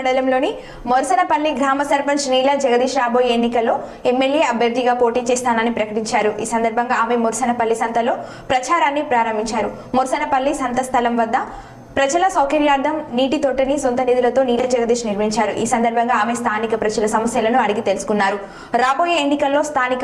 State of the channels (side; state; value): both; identical; correlation 1.00